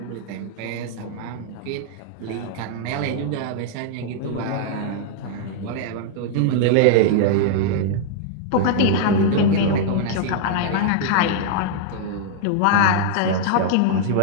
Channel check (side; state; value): both; different; correlation -0.01